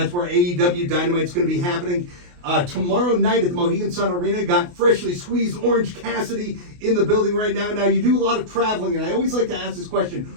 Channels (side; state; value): left; late; 28 ms